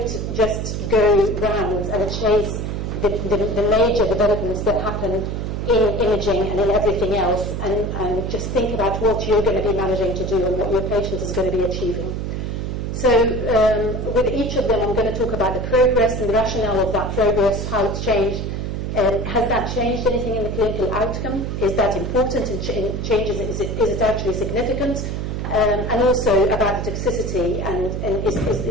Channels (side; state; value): right; noise; hum, 3 dB below the sound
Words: just go round and chase the major developments that happen in imaging and in everything else, and just think about what you're going to be managing to do and what your patient is going to be achieving. So with each of them, I'm going to talk about the progress and the rationale of that progress, how it's changed. Has that changed anything in the clinical outcome? Is that important in changes? Is it actually significant? And also about the toxicity, and